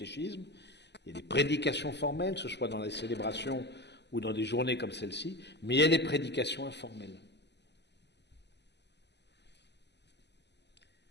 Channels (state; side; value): late; right; 0.50 ms